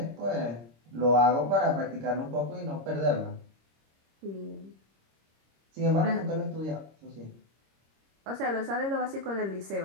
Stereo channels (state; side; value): late; left; 26 ms